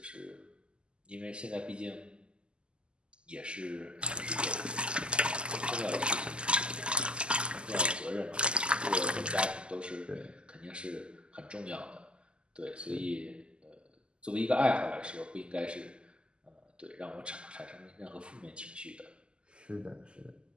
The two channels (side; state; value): left; late; 0.050 ms